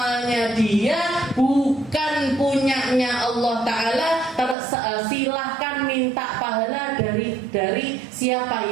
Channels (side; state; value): left; drops out; at 4.5 s